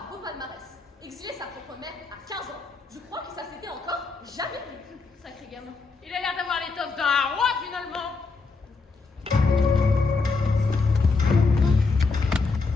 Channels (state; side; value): quieter; right; 4.2 dB